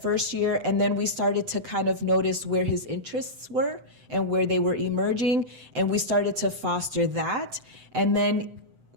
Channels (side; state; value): left; late; 7.9 ms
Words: first year, and then we started to kind of notice where his interests were and where they were emerging, and we started to foster that. And then